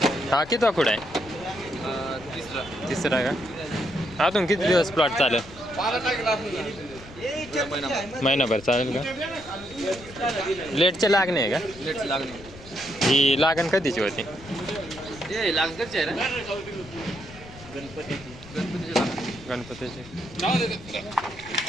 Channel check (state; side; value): noise; left; rumble, 18 dB below the sound